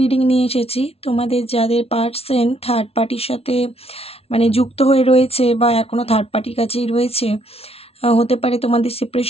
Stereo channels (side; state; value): right; late; 0.29 ms